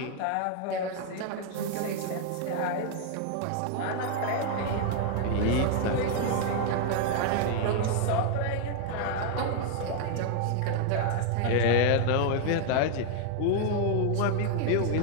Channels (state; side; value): different; both; correlation 0.00